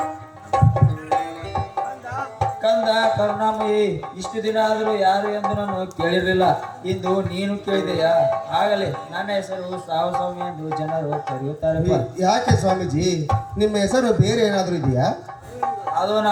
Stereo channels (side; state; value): both; identical; correlation 1.00